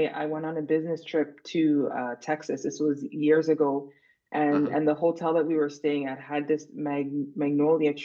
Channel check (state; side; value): identical; both; correlation 1.00